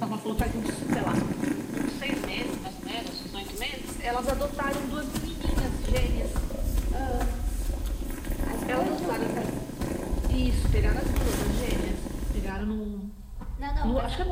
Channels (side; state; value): both; identical; correlation 1.00